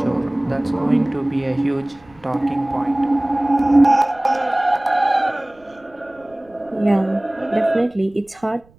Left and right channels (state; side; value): noise; right; rumble, 29 dB below the sound